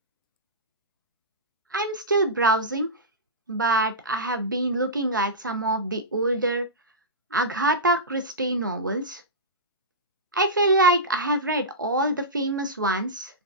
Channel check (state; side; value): normal; both; correlation -0.16